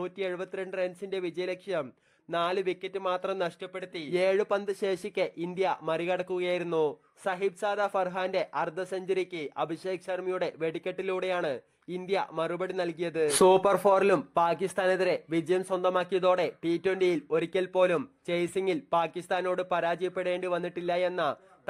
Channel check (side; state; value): both; identical; correlation 1.00